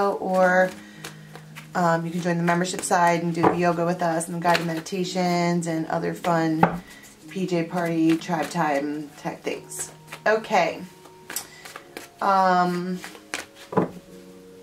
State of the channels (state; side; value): identical; both; correlation 1.00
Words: or you can join the membership side and do yoga with us and guided meditations and other fun PJ party, tribe time type things. Okay.